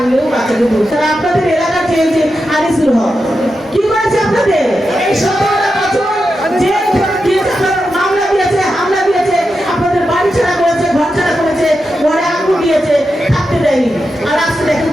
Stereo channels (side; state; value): both; normal; correlation 0.89